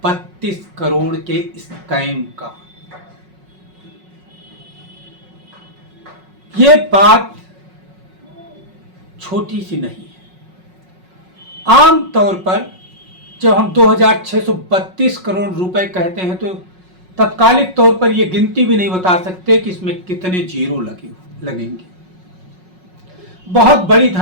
करोड़ के स्कैम का। ये बात छोटी सी नहीं है। आम तौर पर जब हम 2632 करोड़ रुपए कहते हैं तो तत्कालिक तौर पर यह गिनती भी नहीं बता सकते कि इसमें कितने जीरो लगेंगे। बहुत बड़ी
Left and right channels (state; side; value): late; left; 5.4 ms